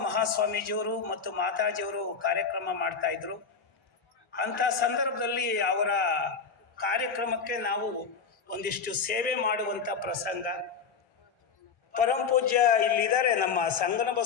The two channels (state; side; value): quieter; right; 5.7 dB